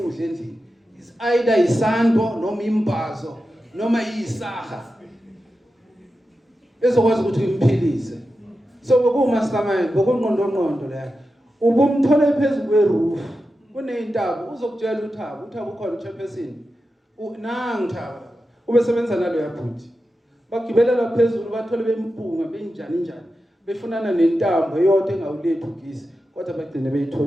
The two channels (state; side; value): normal; both; correlation 0.91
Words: endlini. Is either isando noma imbazo noma isaha. Ezokwazi ukuthi imphilise. So bokumastermind, bokunqondo la. Ubumthola phezulu kweroof. Kuneyintaba uzokutshela uThabo ukhona uchairperson. Nangu Thaba. Ubesebenza nalo yaphuthi. Bagibela la phezulu bathole bempunga benjani. Befunana nentambo eyodwa engawulethu ugisi kodwa bagcine